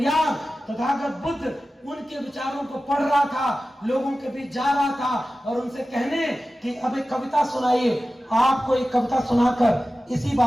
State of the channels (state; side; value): normal; both; correlation 0.95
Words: तथागत बुद्ध, उनके विचारों को पढ़ रहा था, लोगों के बीच जा रहा था और उनसे कहने कि अब एक कविता सुनाइए। आपको एक कविता सुनाकर इसी